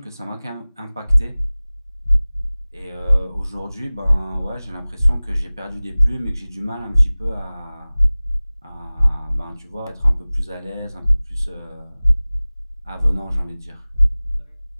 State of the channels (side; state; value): both; inverted; correlation -0.99